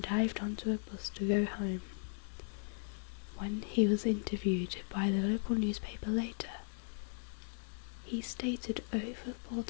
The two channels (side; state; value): right; silent; 53 dB below the other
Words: onto a bus to go home. When he was interviewed by the local newspaper later, he stated over 4